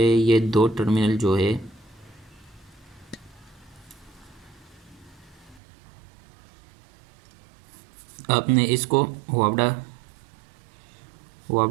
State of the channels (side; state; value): left; drops out; at 5.6 s